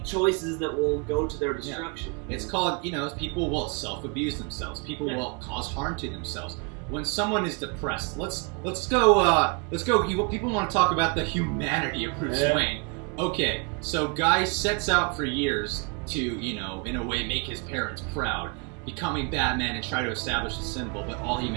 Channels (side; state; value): left; quieter; 32.9 dB